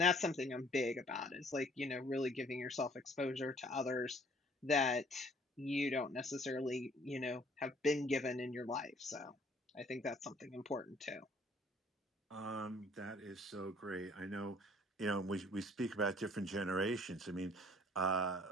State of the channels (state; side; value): normal; both; correlation 0.58